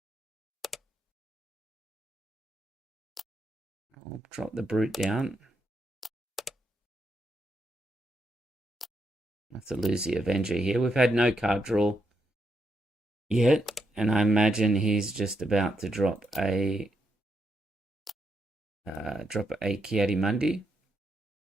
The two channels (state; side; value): normal; both; correlation 0.81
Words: I'll drop the Brute down. I have to lose the Avenger here. We've had no card draw yet, and I imagine he's just about to drop a Ki-Adi-Mundi.